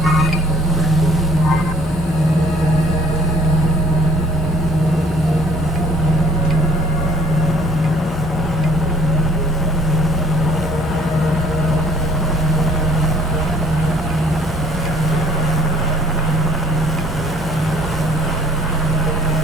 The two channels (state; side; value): normal; both; correlation 0.55